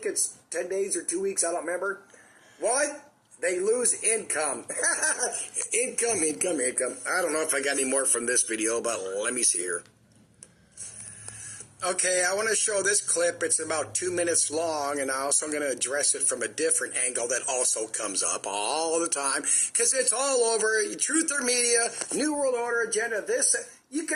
it's 10 days or 2 weeks. I don't remember. Why? They lose income. income. I don't know if I got any more from this video, but let me see here. Okay, I want to show this clip. It's about 2 minutes long, and I'm also going to address it from a different angle that also comes up all the time, because it's all over. Truther media, New World Order agenda, this.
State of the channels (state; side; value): identical; both; correlation 1.00